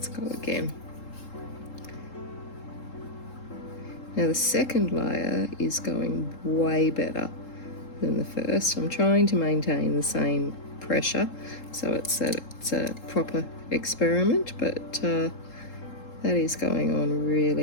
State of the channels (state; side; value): late; right; 3.7 ms